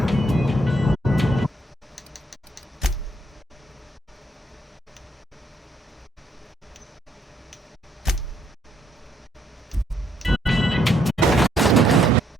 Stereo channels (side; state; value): both; normal; correlation 0.71